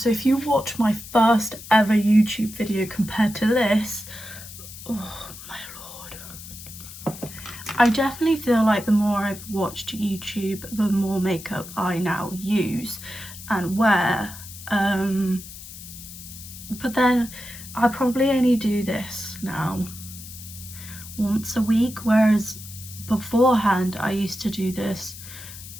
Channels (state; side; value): noise; left; hiss, 14 dB below the sound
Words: if you watch my first ever YouTube video compared to this, oh my lord, I definitely feel like the more I've watched YouTube, the more makeup I now use and wear. But then I probably only do this now once a week, whereas beforehand I used to do this